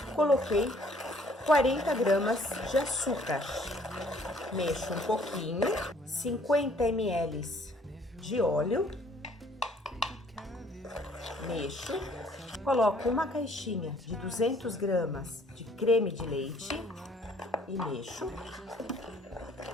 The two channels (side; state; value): both; normal; correlation 0.60